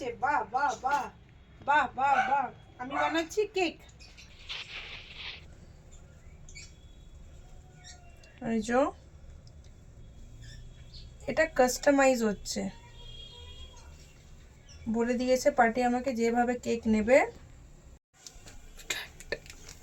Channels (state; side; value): identical; both; correlation 1.00